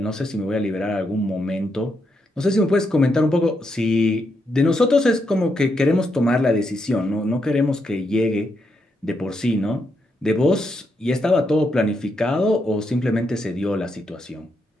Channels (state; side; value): normal; both; correlation 0.81